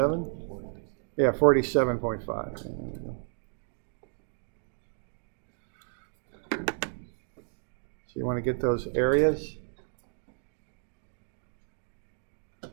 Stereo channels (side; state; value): left; silent; 56 dB below the other